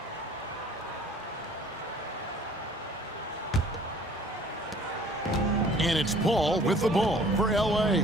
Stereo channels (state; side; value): normal; both; correlation 0.52